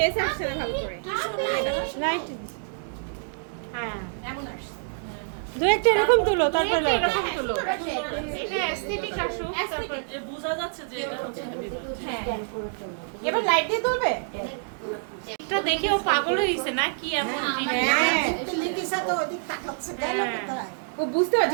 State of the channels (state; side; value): silent; left; digital silence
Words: আসছে না ভালো করে লাইট হ্যাঁ এমন আসছে দু একটা এরকম তুলো তারপর লাইট এরকম হলো। এটা অ্যাস্থেটিক আসুক তারপর এ বোঝা যাচ্ছে যে এটা হচ্ছে happy birthday। এবার লাইট দিয়ে তুলবে এটা দেখে ও পাগল হয়ে গেছে না কি এমন জিনিস? হ্যাঁ লিপিসা তো ওদিক তাকাচ্ছে গেল কোথায় ও বুঝতে